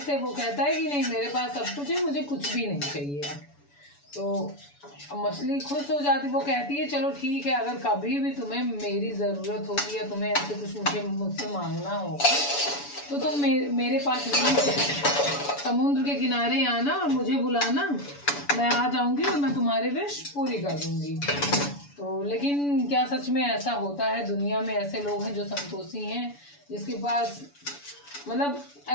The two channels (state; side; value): late; right; 7.0 ms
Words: से वो कहता है कि नहीं, मेरे पास सब कुछ है, मुझे कुछ भी नहीं चाहिए। तो मछली खुश हो जाती, वो कहती है चलो ठीक है, अगर कभी भी तुम्हें मेरी ज़रूरत होगी या तुम्हें ऐसे कुछ मुझसे मांगना होगा तो तुम मेरे पास समुद्र के किनारे आना और मुझे बुलाना, मैं आ जाऊंगी और मैं तुम्हारी विश पूरी कर दूंगी। तो लेकिन क्या सच में ऐसा होता है? दुनिया में ऐसे लोग हैं जो संतोषी हैं, जिसके पास मतलब